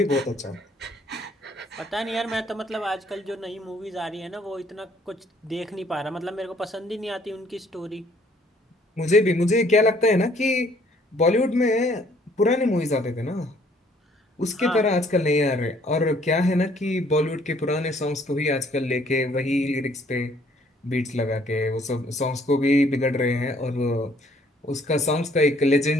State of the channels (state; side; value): normal; both; correlation 0.62